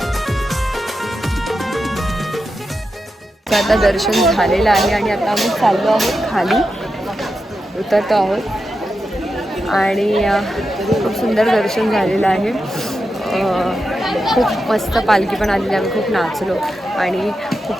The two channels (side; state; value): both; normal; correlation 0.89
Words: आता दर्शन झालेलं आहे आणि आता आम्ही चाललो आहोत खाली, उतरतो आहोत. आणि खूप सुंदर दर्शन झालेलं आहे. खूप मस्त पालखी पण आलेली. आम्ही खूप नाचलो आणि